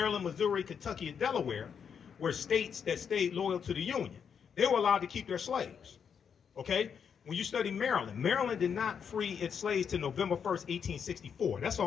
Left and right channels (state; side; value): quieter; right; 7.1 dB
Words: Missouri, Kentucky, and Delaware were states that stayed loyal to the Union. They were allowed to keep their slaves. Okay? When you study Maryland, Maryland did not free its slaves till November 1st, 1864. That's